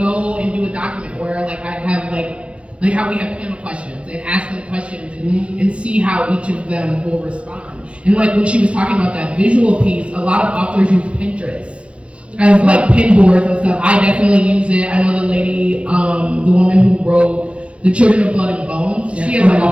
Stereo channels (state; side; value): late; left; 0.060 ms